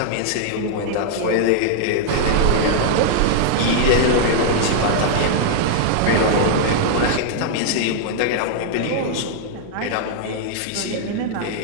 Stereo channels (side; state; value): both; different; correlation -0.01